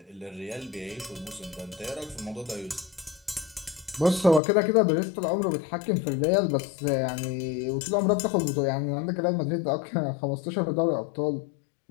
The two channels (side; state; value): right; drops out; at 4.4 s